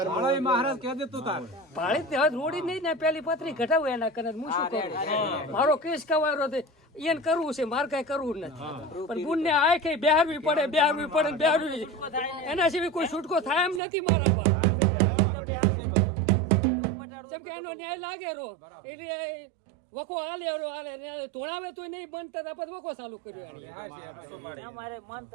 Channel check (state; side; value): drops out; left; at 13.8 s